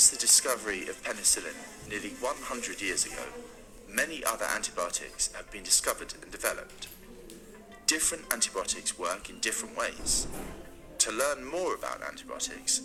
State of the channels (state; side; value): identical; both; correlation 1.00